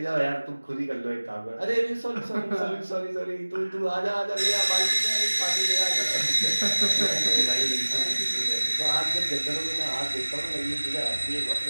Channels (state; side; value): inverted; both; correlation -1.00